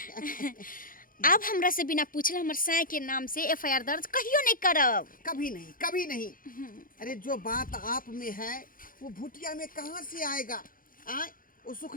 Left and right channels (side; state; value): right; late; 0.40 ms